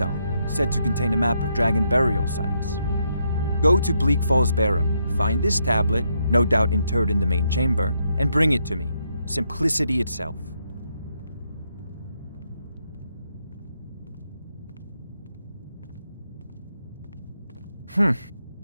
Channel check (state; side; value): inverted; both; correlation -0.78